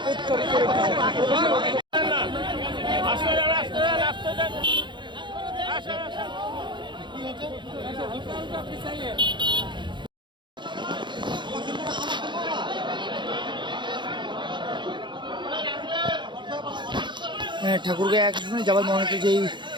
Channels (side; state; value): left; late; 0.23 ms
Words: ঠাকুরগাঁও এক আসনে যাবার মনোনীত যেই